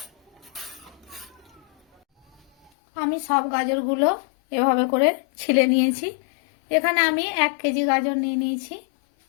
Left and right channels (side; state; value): right; drops out; at 2.7 s